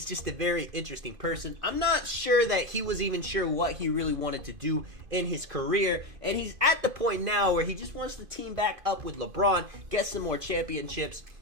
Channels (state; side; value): late; left; 2.5 ms